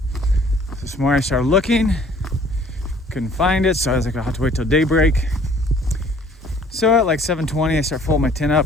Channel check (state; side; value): normal; both; correlation 0.56